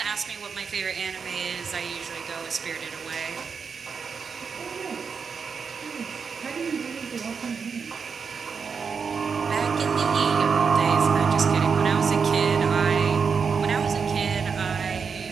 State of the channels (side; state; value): left; quieter; 5.8 dB